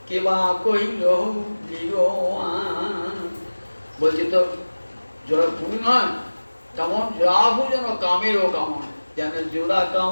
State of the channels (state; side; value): inverted; both; correlation -1.00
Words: কেবা কইল বলছে তো জোড়া ভুরু নয়, তেমন জোড়া ভুরু যেন কামেরও কামান, যেন জোড়া